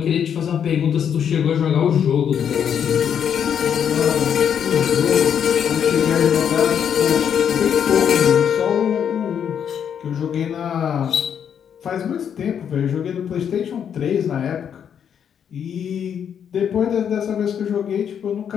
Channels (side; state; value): right; quieter; 8.3 dB